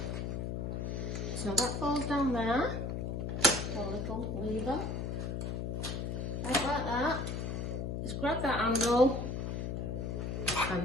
So that falls down there, a little lever, like that. Just grab that handle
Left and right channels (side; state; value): left; noise; hum, 2 dB below the sound